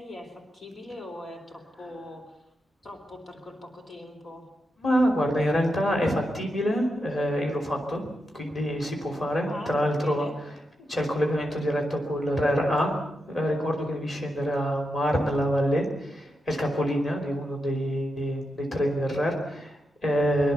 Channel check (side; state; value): both; normal; correlation 0.86